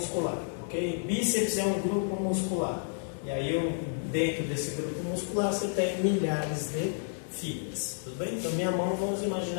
Ok? Bíceps é um grupo muscular. E aí, dentro desse grupo muscular, você tem milhares de fibras. Tudo bem? Então, minha mão, vamos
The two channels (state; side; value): silent; right; digital silence